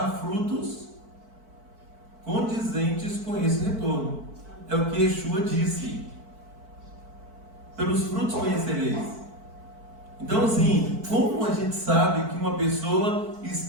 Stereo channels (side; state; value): left; late; 4.5 ms